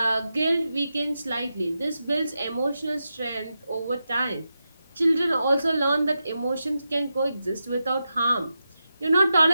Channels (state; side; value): inverted; both; correlation -0.90